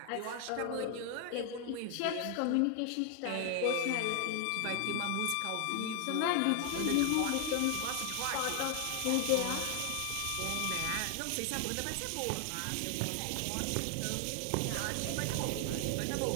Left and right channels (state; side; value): different; both; correlation 0.00